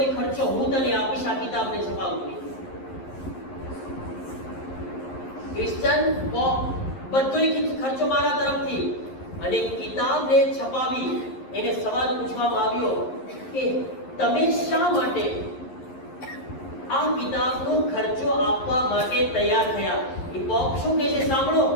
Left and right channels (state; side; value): late; right; 11 ms